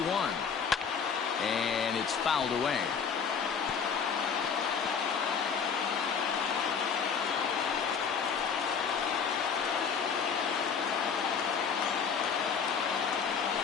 and it's fouled away.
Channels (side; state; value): right; quieter; 6.4 dB